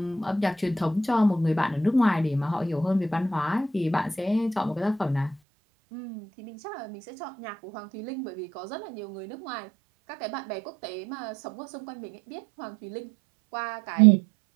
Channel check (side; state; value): left; drops out; at 5.4 s